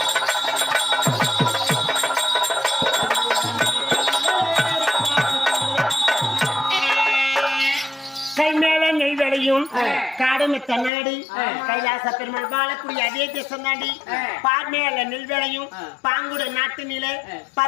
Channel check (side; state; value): right; drops out; at 10.9 s